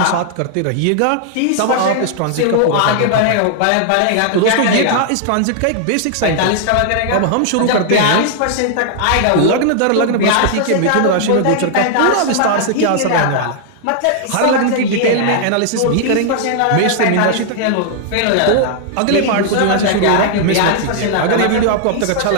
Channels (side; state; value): both; different; correlation 0.00